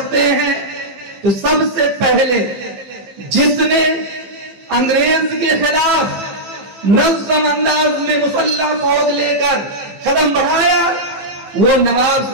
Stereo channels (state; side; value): late; left; 15 ms